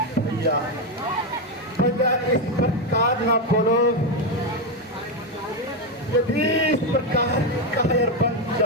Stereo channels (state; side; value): normal; both; correlation 0.07